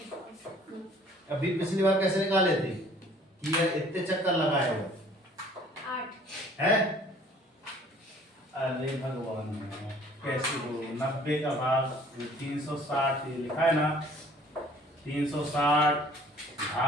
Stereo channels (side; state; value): both; normal; correlation 0.54